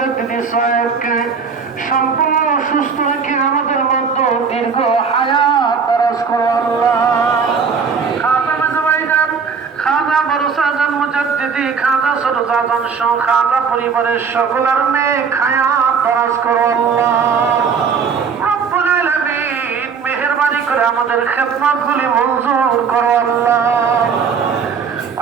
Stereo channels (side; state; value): left; quieter; 5.8 dB